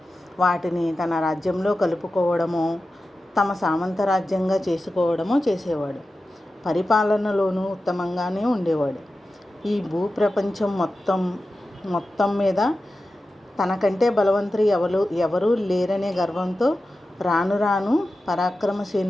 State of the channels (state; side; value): normal; both; correlation 0.93